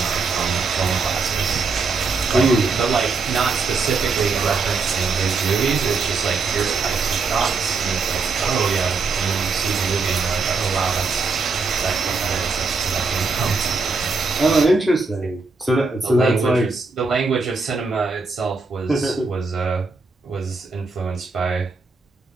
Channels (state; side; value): quieter; left; 4.3 dB